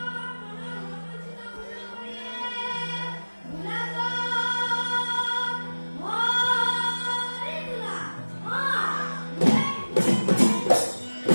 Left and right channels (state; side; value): inverted; both; correlation -1.00